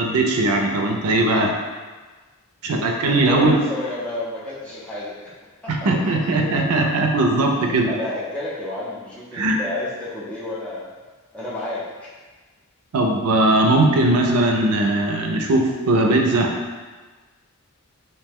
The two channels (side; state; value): both; normal; correlation 0.30